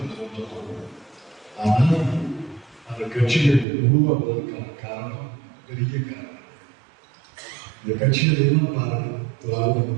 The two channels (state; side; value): drops out; left; at 3.7 s